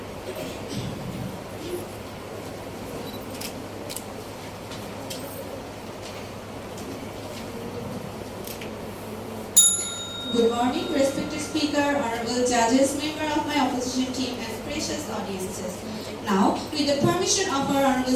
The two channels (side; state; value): both; identical; correlation 1.00